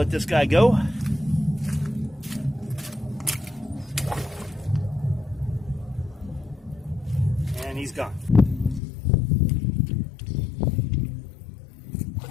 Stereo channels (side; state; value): right; drops out; at 8.8 s